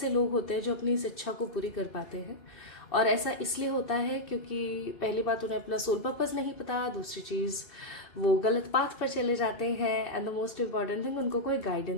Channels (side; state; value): right; late; 2.7 ms